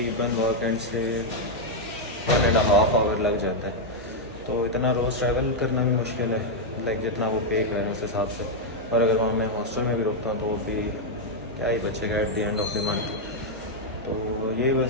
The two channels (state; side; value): normal; both; correlation 0.00